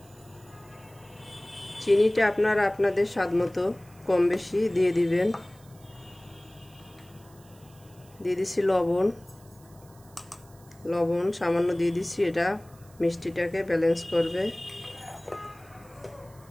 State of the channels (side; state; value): right; noise; hiss, 27 dB below the sound